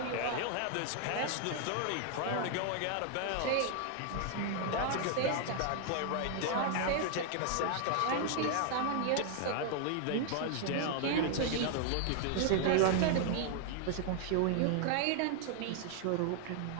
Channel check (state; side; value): different; both; correlation 0.00